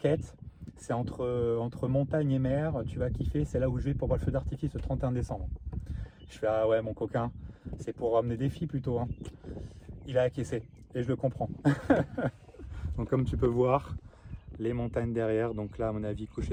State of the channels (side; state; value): both; identical; correlation 1.00